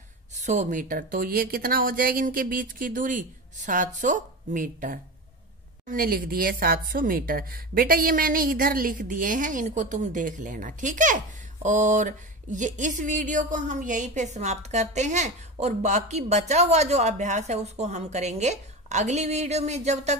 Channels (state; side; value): normal; both; correlation 0.25